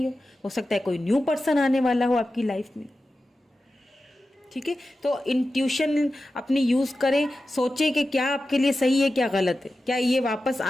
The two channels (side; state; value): both; normal; correlation 0.93